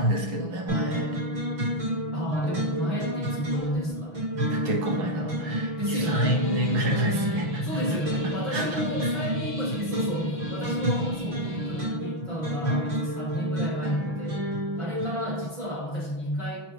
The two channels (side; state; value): left; late; 6.1 ms